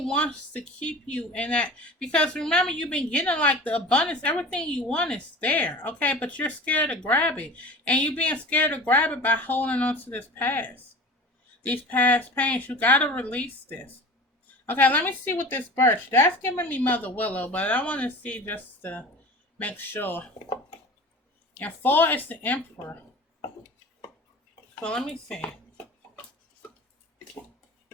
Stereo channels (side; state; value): both; normal; correlation 0.37